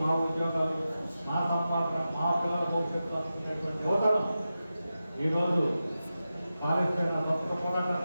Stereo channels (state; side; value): inverted; both; correlation -0.92